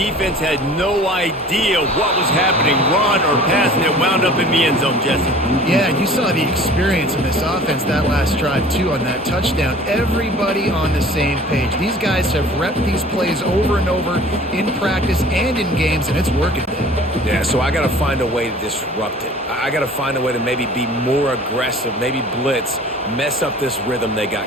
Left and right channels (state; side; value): normal; both; correlation 0.46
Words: had no idea what was happening, run or pass, and it wound up in the end zone, Jesse. Yeah, you saw the experience in this offense that last drive, too, on that touchdown. Everybody on the same page. These guys have repped these plays over and over in practice and in games, and it's working. Yeah, so I got to find a way to disrupt it. I got to find a way to maybe be more aggressive, maybe blitz, mess up this rhythm they